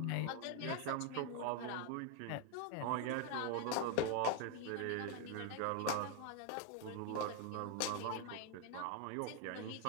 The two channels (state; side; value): different; both; correlation 0.00